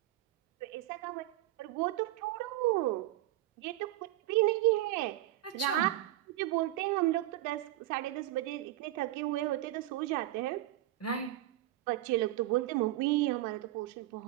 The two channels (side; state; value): left; quieter; 15.3 dB